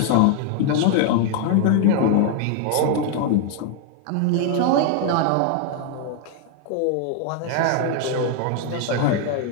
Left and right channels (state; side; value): different; both; correlation 0.00